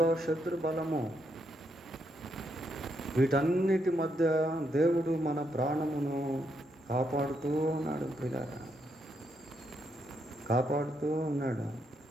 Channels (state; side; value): normal; both; correlation 0.78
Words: శత్రు బలము, వీటన్నిటి మధ్య దేవుడు మన ప్రాణమును కాపాడుతూ ఉన్నాడు ప్రియులారా, కాపాడుతూ ఉన్నాడు.